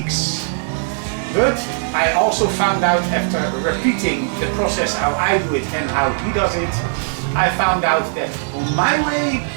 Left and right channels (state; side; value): silent; left; digital silence